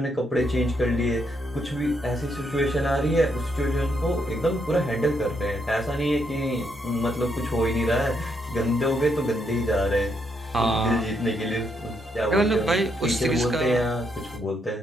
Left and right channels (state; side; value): normal; both; correlation 0.77